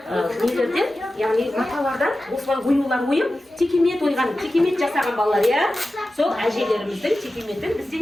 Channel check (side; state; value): both; normal; correlation 0.94